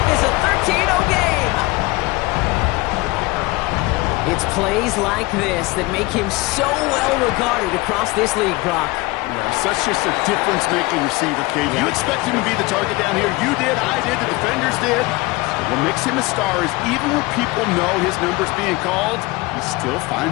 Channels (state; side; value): quieter; right; 22.0 dB